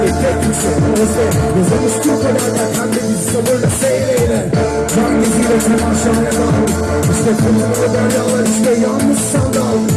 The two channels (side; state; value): both; identical; correlation 1.00